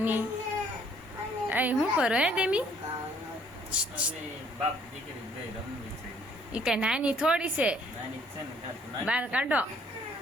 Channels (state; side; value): normal; both; correlation 0.62